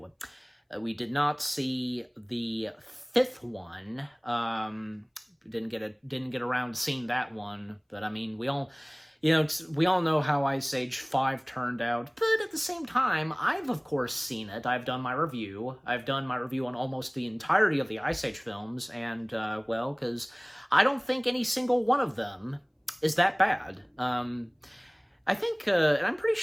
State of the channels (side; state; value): both; identical; correlation 1.00